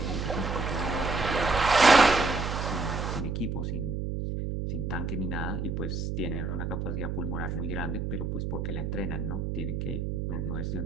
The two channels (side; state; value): right; noise; hum, 2 dB below the sound